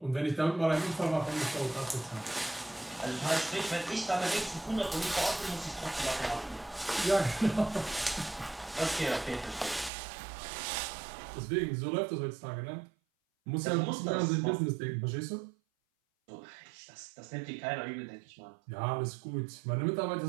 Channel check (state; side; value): drops out; left; at 9.9 s